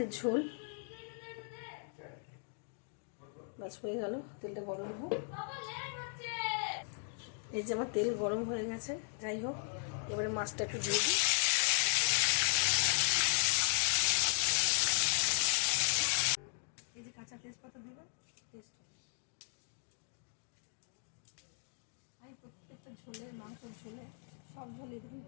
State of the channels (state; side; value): silent; right; 53 dB below the other